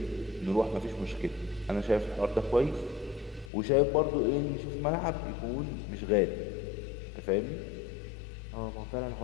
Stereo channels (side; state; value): right; drops out; at 3.5 s